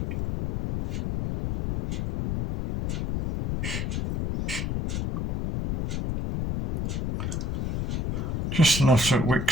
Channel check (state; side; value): noise; left; rumble, 2 dB below the sound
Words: Just enough so it